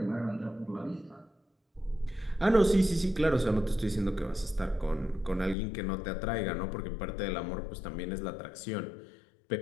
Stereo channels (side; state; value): right; drops out; at 5.6 s